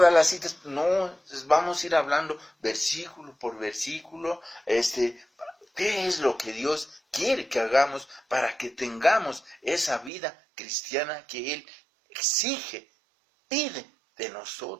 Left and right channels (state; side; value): drops out; left; at 10.1 s